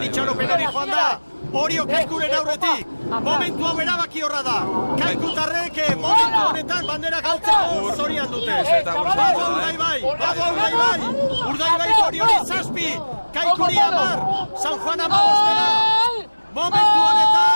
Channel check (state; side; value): inverted; both; correlation -1.00